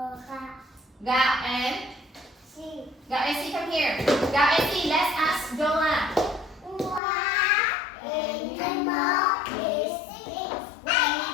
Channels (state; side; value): drops out; right; at 7.0 s